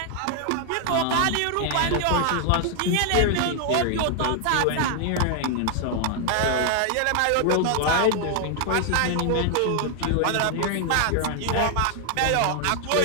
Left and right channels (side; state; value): both; different; correlation 0.00